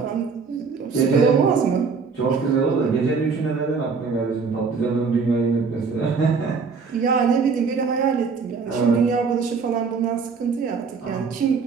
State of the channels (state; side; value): quieter; left; 5.2 dB